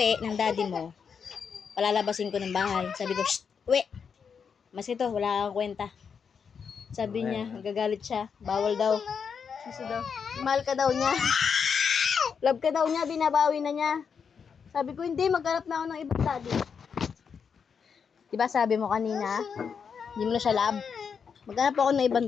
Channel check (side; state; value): right; quieter; 6.4 dB